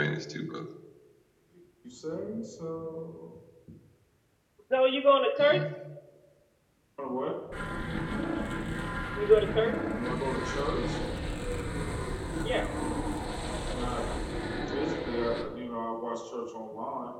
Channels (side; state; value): both; identical; correlation 1.00